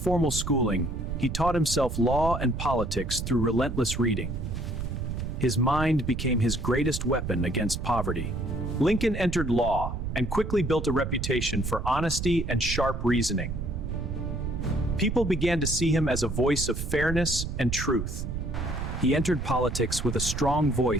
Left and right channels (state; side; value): noise; right; rumble, 4 dB below the sound